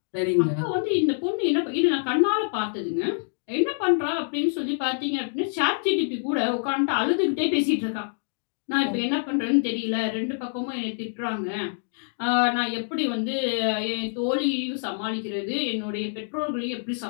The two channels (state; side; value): silent; right; digital silence